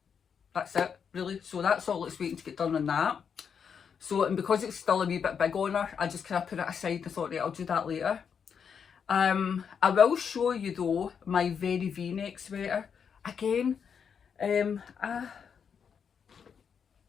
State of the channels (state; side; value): quieter; right; 7.0 dB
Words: That's it, really. So that's all it's waiting to get done on that. So, and because it's still a wee bit big on her, I just kind of put it aside and thought, right, I'll do that later. I will show you though my very V-neck sweater again.